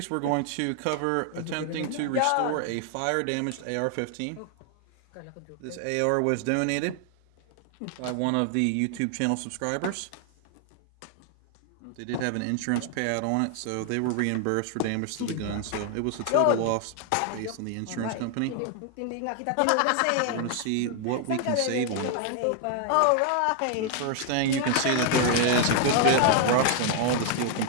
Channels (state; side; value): different; both; correlation 0.00